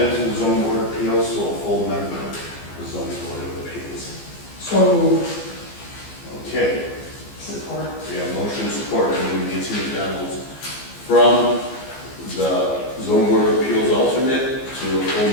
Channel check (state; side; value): late; right; 15 ms